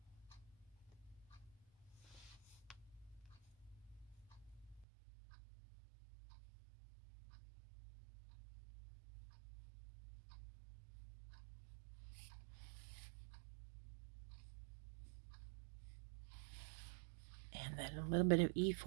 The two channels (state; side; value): drops out; left; at 4.9 s